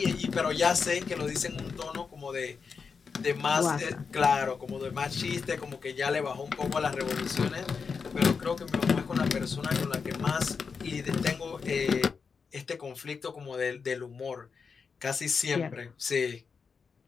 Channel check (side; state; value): right; quieter; 5.5 dB